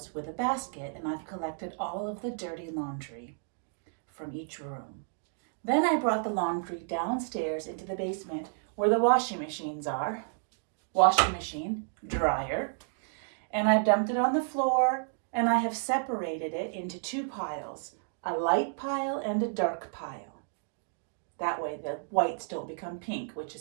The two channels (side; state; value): left; silent; digital silence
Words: with a basket and I've collected all of the dirty laundry from each room. Then I brought the laundry downstairs into the basement where the washing machines are. Washing machine, dryer, and I've dumped it on the floor. And I have separated it into two piles, a light pile and a dark pile. That way the whites don't become pink, which